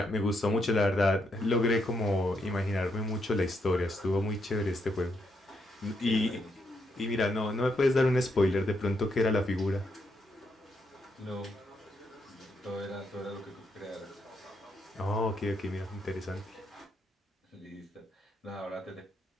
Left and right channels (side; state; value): both; normal; correlation 0.78